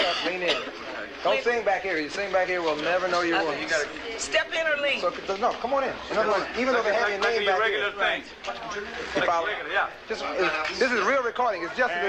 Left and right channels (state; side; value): identical; both; correlation 1.00